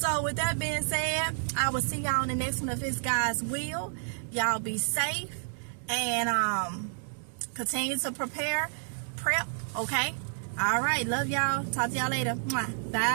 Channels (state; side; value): silent; left; digital silence